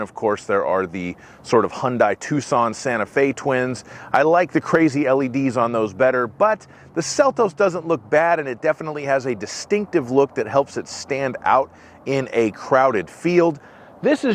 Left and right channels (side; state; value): both; identical; correlation 1.00